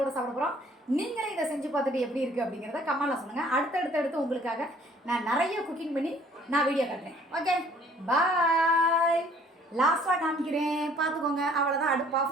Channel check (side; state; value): both; normal; correlation 0.57